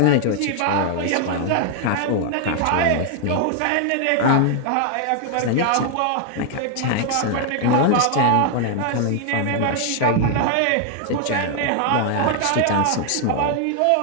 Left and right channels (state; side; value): different; both; correlation 0.00